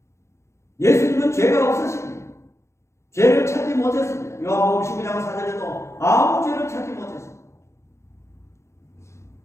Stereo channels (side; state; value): right; late; 0.14 ms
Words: 예수님은 죄가 없으십니다. 죄를 찾지 못했습니다. 요한복음 19장 4절에도 아무 죄를 찾지 못했습니다.